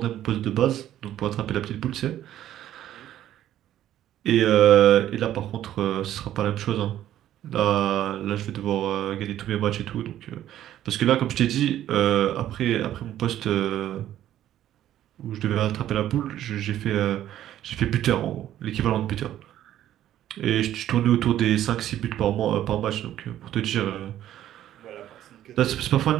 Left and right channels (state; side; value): quieter; left; 12.1 dB